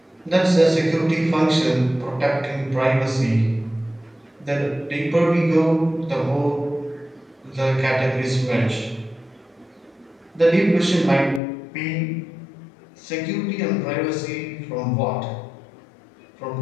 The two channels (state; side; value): drops out; right; at 11.4 s